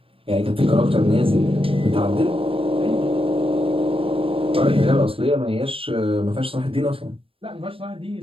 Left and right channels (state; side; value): late; left; 0.27 ms